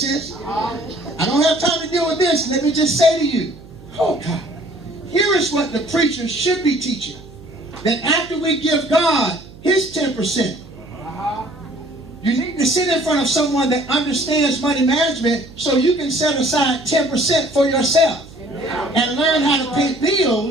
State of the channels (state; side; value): noise; right; hum, 20 dB below the sound